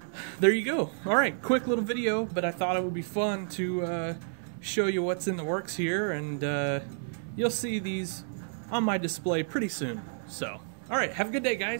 there you go. All right, quick little video, but I thought it would be fun to show you what's in the works here, and you'll see these on my display pretty soon. So, all right, have a good day,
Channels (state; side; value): silent; left; 58 dB below the other